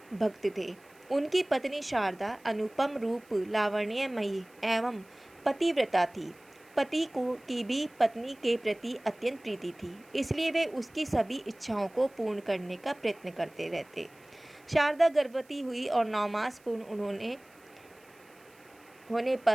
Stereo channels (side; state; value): right; noise; hiss, 29 dB below the sound